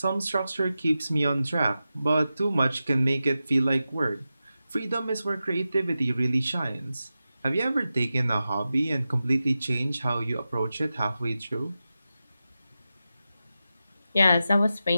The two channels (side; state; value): both; inverted; correlation -0.92